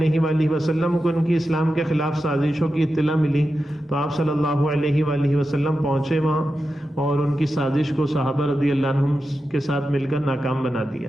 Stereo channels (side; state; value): both; normal; correlation 0.91